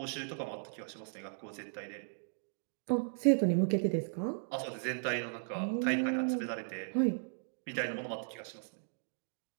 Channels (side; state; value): left; silent; digital silence